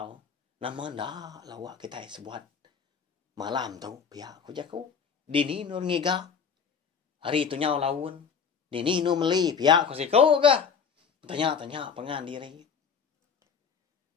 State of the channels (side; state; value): right; quieter; 6.5 dB